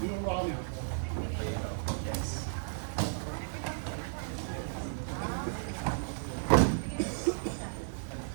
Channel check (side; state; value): left; silent; digital silence